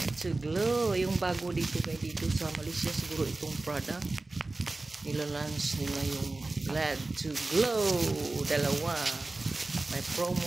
to Glow. Yung bago dito sa Malaysia siguro itong product. Nila-launch nila yung Glad to Glow. Dalawa. May promo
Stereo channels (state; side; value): quieter; left; 3.2 dB